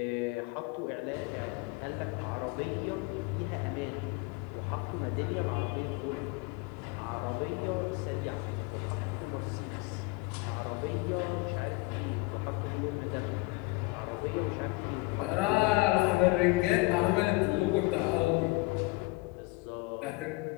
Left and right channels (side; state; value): right; quieter; 23.7 dB